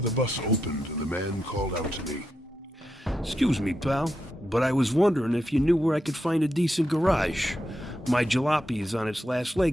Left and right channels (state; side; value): normal; both; correlation 0.85